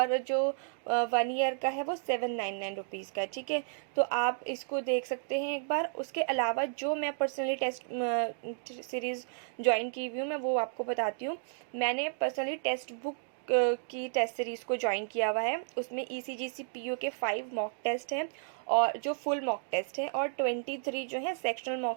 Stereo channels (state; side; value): silent; left; digital silence